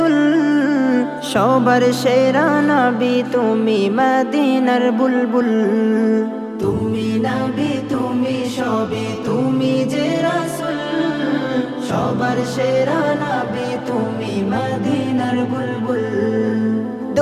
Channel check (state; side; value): identical; both; correlation 1.00